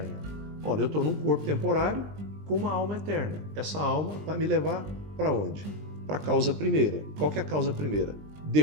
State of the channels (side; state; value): left; late; 20 ms